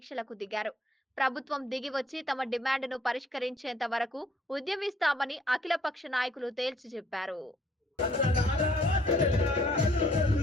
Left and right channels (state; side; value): normal; both; correlation 0.63